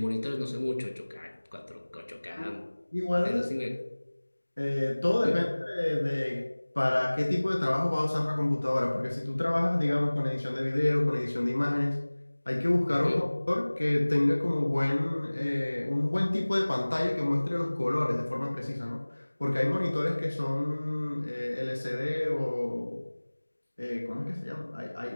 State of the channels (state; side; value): inverted; both; correlation -1.00